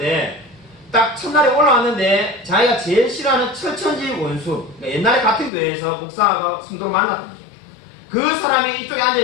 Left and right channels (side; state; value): right; drops out; at 5.5 s